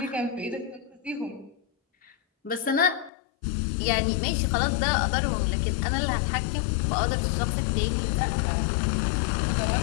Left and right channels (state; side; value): drops out; right; at 3.1 s